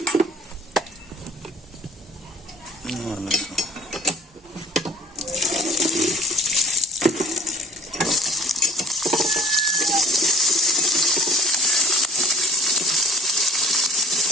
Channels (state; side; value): normal; both; correlation 0.50